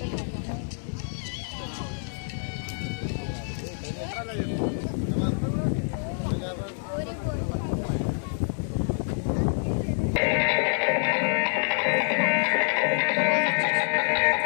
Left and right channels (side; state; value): right; silent; digital silence